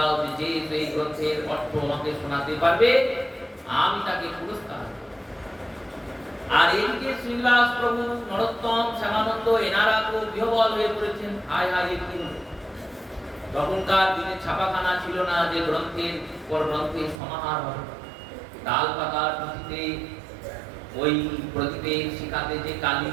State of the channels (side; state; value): left; drops out; at 17.2 s